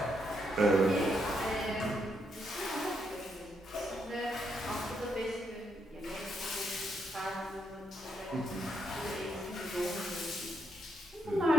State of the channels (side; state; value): both; normal; correlation 0.78